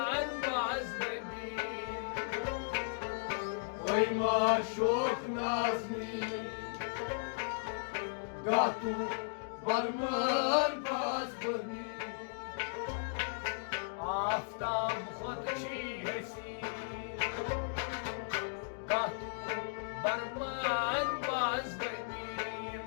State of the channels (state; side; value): silent; right; digital silence